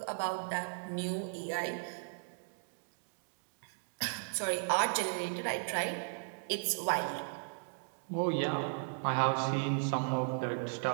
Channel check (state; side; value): silent; left; digital silence